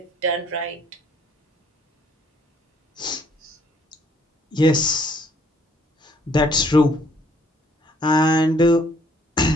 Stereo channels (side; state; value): both; normal; correlation 0.63